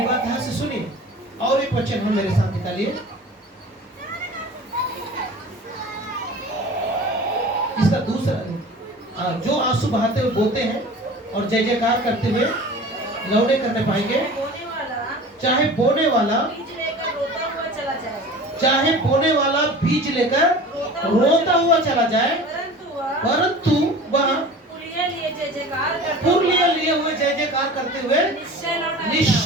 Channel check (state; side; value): normal; both; correlation 0.40